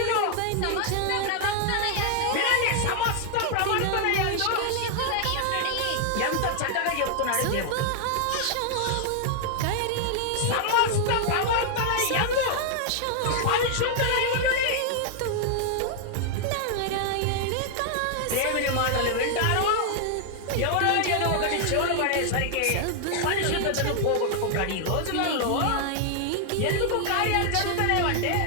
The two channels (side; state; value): both; different; correlation 0.00